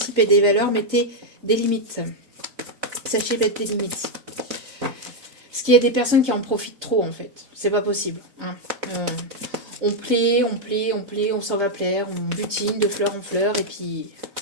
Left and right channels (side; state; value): left; late; 3.8 ms